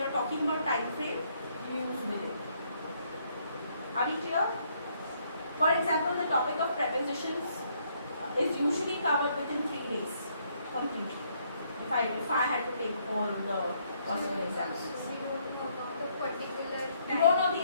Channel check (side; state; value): both; inverted; correlation -0.69